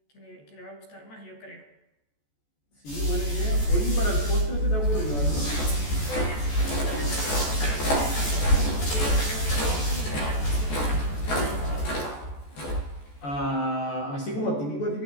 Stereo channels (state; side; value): late; right; 14 ms